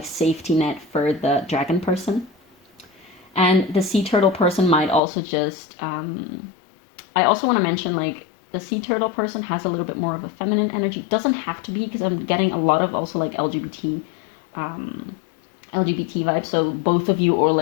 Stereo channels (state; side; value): drops out; right; at 5.0 s